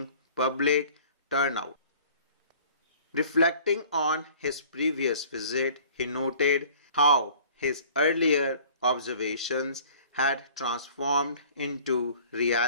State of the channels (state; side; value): inverted; both; correlation -0.50